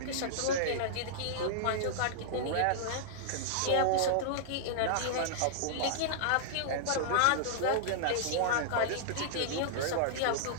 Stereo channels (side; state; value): both; different; correlation -0.01